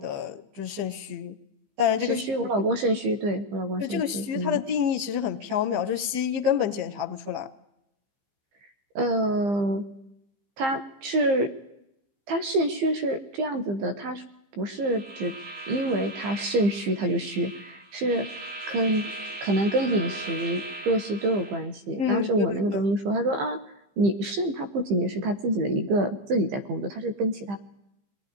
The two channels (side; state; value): left; late; 15 ms